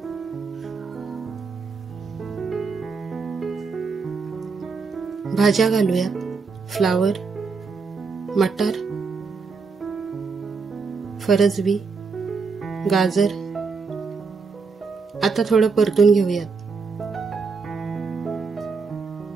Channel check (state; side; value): quieter; left; 4.8 dB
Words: भाज्या घालूयात. फ्लावर, मटार, फरसबी, गाजर. आता थोडं परतून घेऊयात.